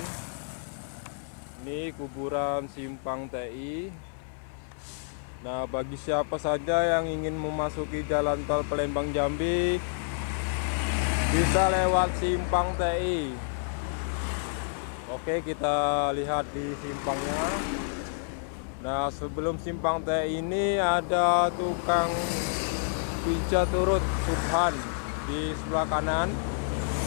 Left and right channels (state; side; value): silent; right; 56 dB below the other